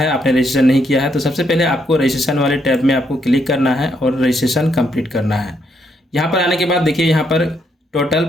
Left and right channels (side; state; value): both; normal; correlation 0.75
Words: आपने रजिस्ट्रेशन नहीं किया है, तो सबसे पहले आपको रजिस्ट्रेशन वाले टैब में आपको क्लिक करना है और रजिस्ट्रेशन कंप्लीट करना है। यहाँ पर आने के बाद देखिए यहाँ पर टोटल